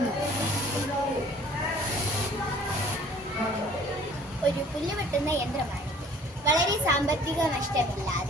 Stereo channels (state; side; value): normal; both; correlation 0.52